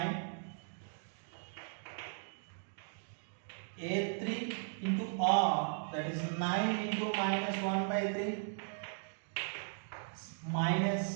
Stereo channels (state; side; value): silent; left; digital silence